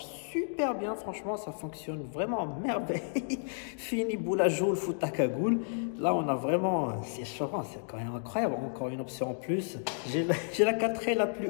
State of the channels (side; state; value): right; silent; digital silence